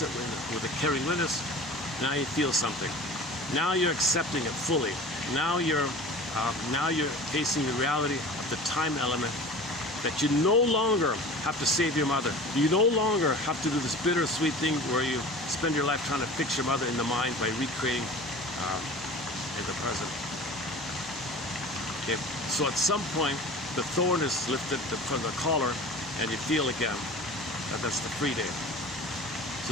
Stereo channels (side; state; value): both; normal; correlation 0.38